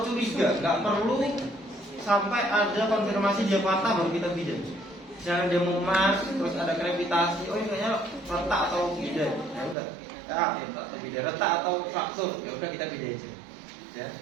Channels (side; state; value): left; drops out; at 9.8 s